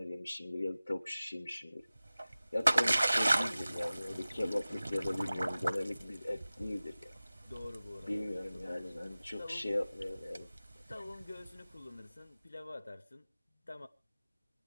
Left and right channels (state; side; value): inverted; both; correlation -0.97